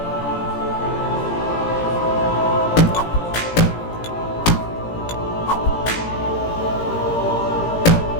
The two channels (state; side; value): late; right; 17 ms